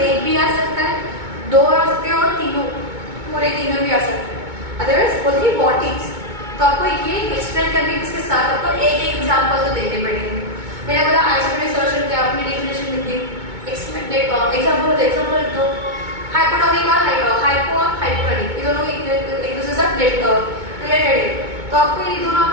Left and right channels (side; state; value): left; late; 2.2 ms